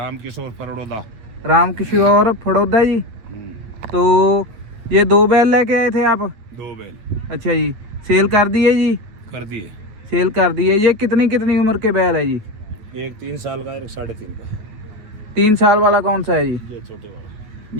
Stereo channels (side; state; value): left; late; 9.1 ms